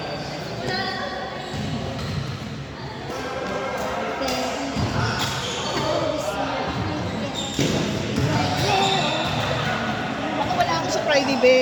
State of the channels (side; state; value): both; identical; correlation 1.00